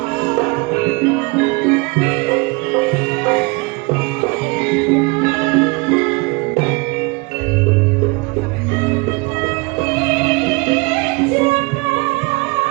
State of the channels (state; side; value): quieter; left; 27.9 dB